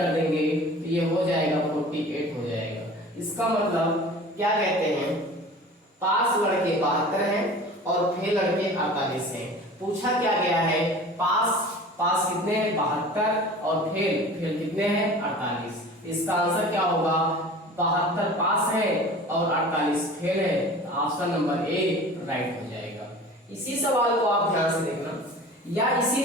देंगे तो ये हो जाएगा 48 हो जाएगा। इसका मतलब क्या कहते हैं, पास लड़के 72 हैं और फेल लड़के 48 हैं। पूछा क्या गया है, पास कितने हैं 72 और फेल कितने हैं 48। इसका आंसर क्या होगा, 72 पास है और 48 फेल है। ऑप्शन नंबर ए राइट हो जाएगा। इसी सवाल को आप ध्यान से देखना, या इसी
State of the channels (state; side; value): normal; both; correlation 0.41